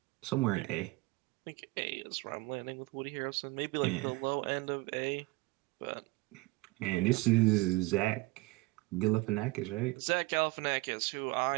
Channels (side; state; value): left; quieter; 22.3 dB